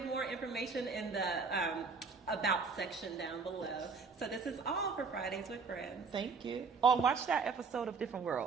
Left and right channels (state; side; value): quieter; left; 4.8 dB